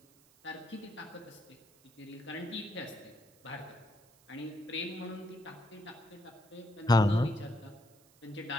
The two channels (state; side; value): noise; right; hiss, 28 dB below the sound